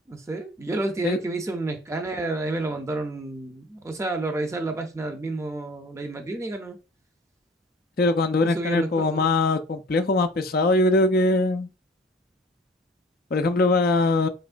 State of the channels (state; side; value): normal; both; correlation 0.46